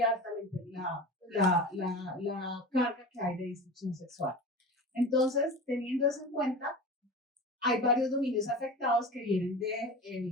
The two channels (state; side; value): normal; both; correlation 0.32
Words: alta la carga que hay de disfunción sexual. Entonces, teniendo eso en cuenta, hay varios dominios afectados que vienen